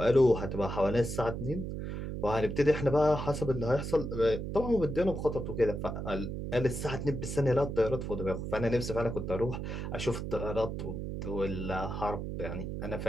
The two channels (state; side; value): noise; right; hum, 5 dB below the sound